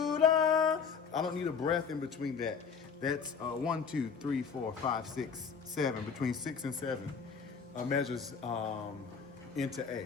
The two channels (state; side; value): quieter; right; 6.1 dB